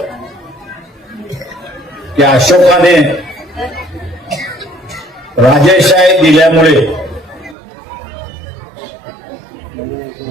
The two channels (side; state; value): left; drops out; at 7.6 s